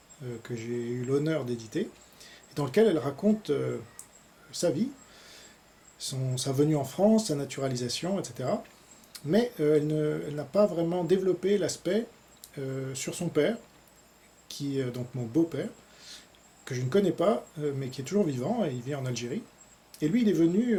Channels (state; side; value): identical; both; correlation 1.00